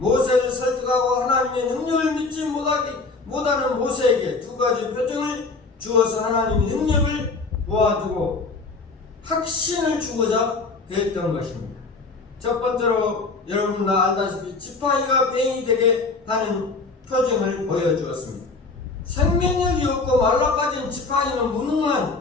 설득하고 하나님의 능력을 믿지 못하는 모세에게 두 가지 표정을 주어서 하나님의 능력을 보아주고 확신을 주고자 했던 것입니다. 첫 번째로 여러분 다 알다시피 지팡이가 뱀이 되게 하는 표정을 보여주었습니다. 생명력이 없고 말라빠진 지팡이는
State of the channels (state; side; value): quieter; right; 3.9 dB